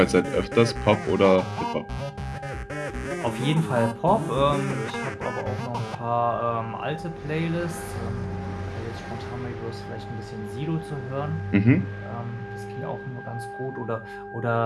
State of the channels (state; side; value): identical; both; correlation 1.00